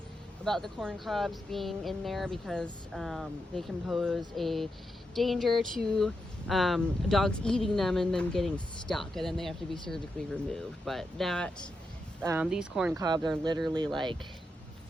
about the corn cobs being in there because they can pose a danger to dogs eating them and them getting stuck, and then they have to be surgically removed. But these corn cobs are literally like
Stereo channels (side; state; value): both; normal; correlation 0.86